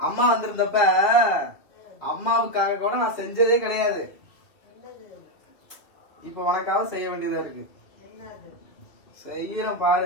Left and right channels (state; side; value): late; right; 2.7 ms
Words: அம்மா வந்திருந்தப்ப அம்மாவுக்காக கூட நான் செஞ்சதே கிடையாது. இப்ப உனக்காக செய்ய வேண்டியதா இருக்கு. செய்யறேன்